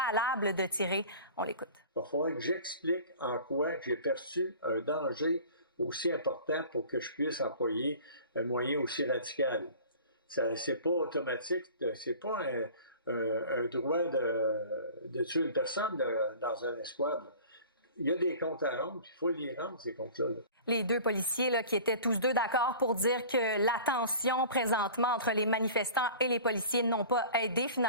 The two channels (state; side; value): inverted; both; correlation -0.42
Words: de tirer. On l'écoute. Il va falloir que j'explique en quoi j'ai perçu un danger aussi important pour que je puisse employer un moyen aussi radical. C'est pas automatique, c'est pas un droit de tuer une personne dans un escouade. Il y a des comptes à rendre, il faut les rendre, ces comptes-là. Les deux policiers là, qui étaient tous deux d'accord pour dire que la tension présentement entre les manifestants et les policiers n'ont pas aidé